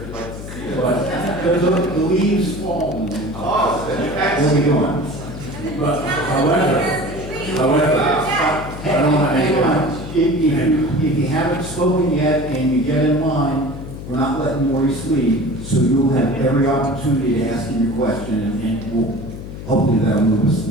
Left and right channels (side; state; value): left; noise; hum, 10 dB below the sound